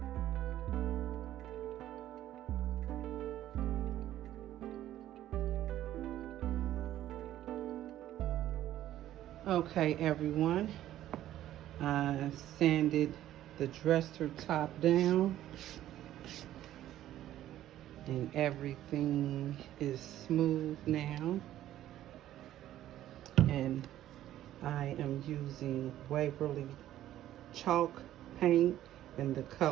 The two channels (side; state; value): left; quieter; 12.9 dB